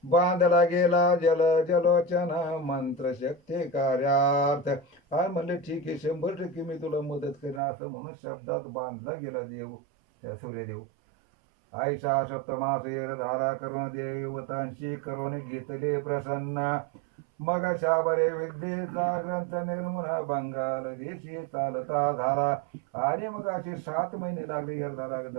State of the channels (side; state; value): left; drops out; at 7.6 s